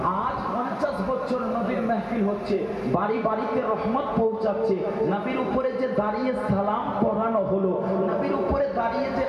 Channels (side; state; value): both; identical; correlation 1.00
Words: আজ 50 বছর নবীর মাহফিল হচ্ছে, বাড়ি বাড়িতে রহমত পৌঁছাচ্ছে। নবীর উপরে যে দাঁড়িয়ে সালাম পড়ানো হলো, নবীর উপরে দাঁড়িয়ে যে